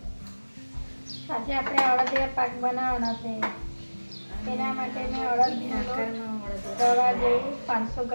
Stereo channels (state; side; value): inverted; both; correlation -1.00